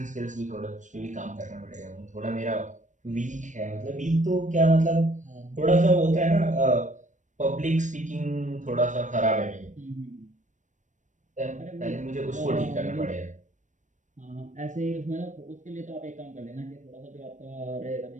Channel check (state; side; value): late; left; 0.36 ms